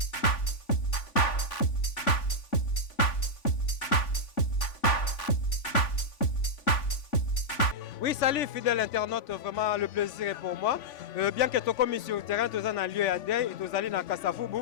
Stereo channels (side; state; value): right; late; 3.5 ms